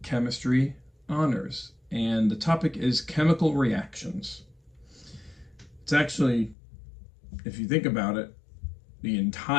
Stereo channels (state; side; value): drops out; right; at 6.6 s